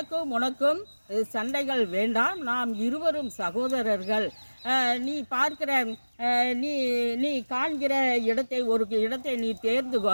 உனக்கும் சண்டைகள் வேண்டாம், நாம் இருவரும் சகோதரர்கள், நீ பார்க்கிற நீ காண்கிற ஒரு இடத்தை நீ தேர்ந்து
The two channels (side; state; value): both; inverted; correlation -1.00